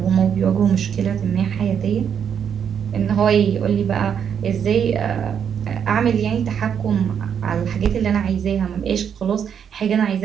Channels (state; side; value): quieter; left; 7.9 dB